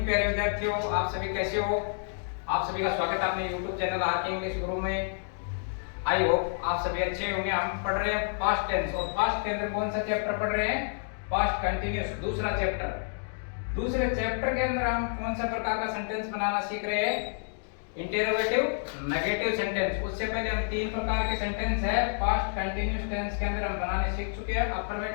प्यारे विद्यार्थियों, आप सभी कैसे हो। आप सभी का स्वागत है अपने YouTube चैनल आरके इंग्लिश गुरु में। आई होप आप सभी अच्छे होंगे। हम पढ़ रहे हैं पास्ट टेंस और पास्ट के अंदर कौन सा चैप्टर पढ़ रहे हैं? पास्ट कंटिन्यूअस, दूसरा चैप्टर। दूसरे चैप्टर के अंदर हम कौन सा प्रकार का सेंटेंस बनाना सीख रहे हैं? Interrogative, negative sentence. उससे पहले हम तीन प्रकार के सेंटेंस है पास्ट कंटिन्यूअस टेंस के अंदर हम बनाने सीख चुके हैं।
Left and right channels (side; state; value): right; silent; digital silence